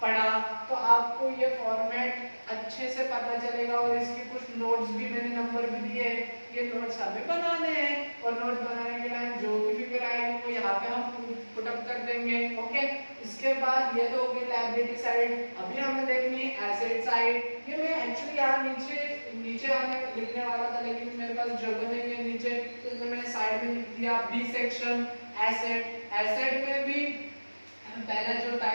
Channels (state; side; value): inverted; both; correlation -1.00